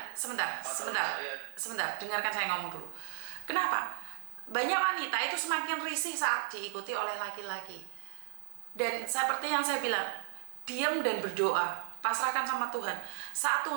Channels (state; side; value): silent; left; 55 dB below the other